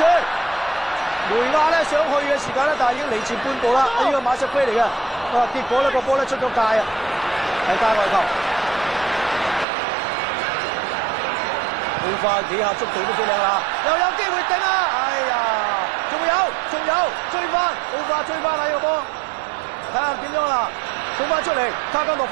梅亞咧想去嘅時間咧，但係已經離前半步啦。呢個馬錫菲嚟嘅，結果咧個波咧出咗界啊，係界外球。奧化幾下速度都幾靚啦，又有機會頂啊！哎呀，仲有追翻，奧化追翻啦呢個波，睇下點樣啦，送翻出嚟，卡加諾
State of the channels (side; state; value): left; drops out; at 9.7 s